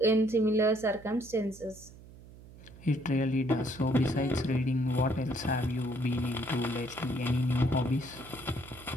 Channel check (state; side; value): noise; right; hum, 19 dB below the sound